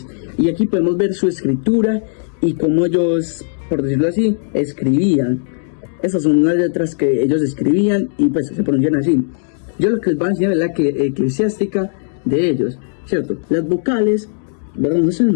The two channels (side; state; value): right; silent; digital silence